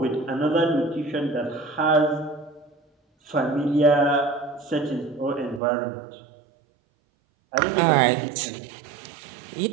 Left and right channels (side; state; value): left; drops out; at 5.6 s